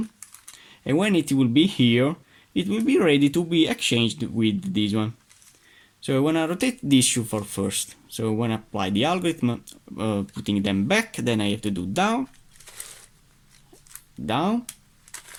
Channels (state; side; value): identical; both; correlation 1.00